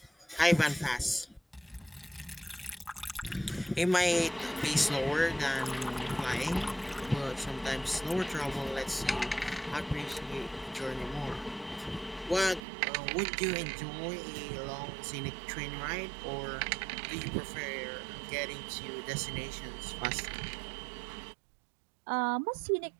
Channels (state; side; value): drops out; left; at 12.6 s